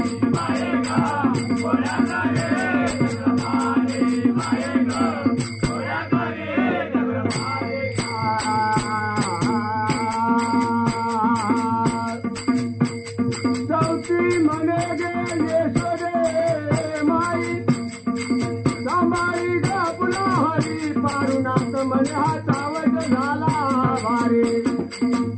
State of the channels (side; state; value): both; identical; correlation 1.00